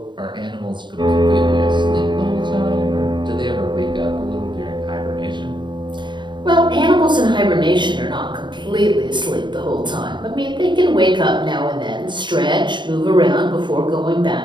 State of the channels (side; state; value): left; late; 0.22 ms